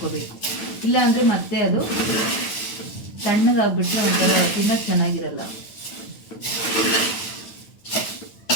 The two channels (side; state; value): right; late; 9.3 ms